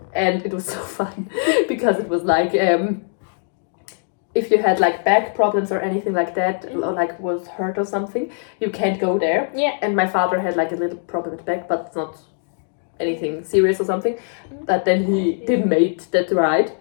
And it was so fun because it was like, if you had like back problems or anything like that, or like was hurt or something, you can't go there. Yeah. And my father had like a little problem with back, but it's not anything serious or something. But then he didn't make that ride.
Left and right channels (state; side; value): silent; right; digital silence